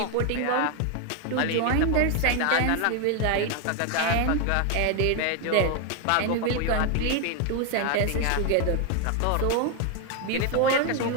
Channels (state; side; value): different; both; correlation 0.01